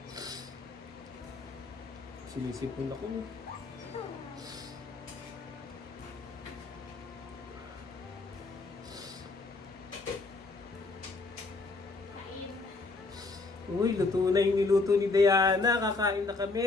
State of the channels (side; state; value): right; quieter; 3.7 dB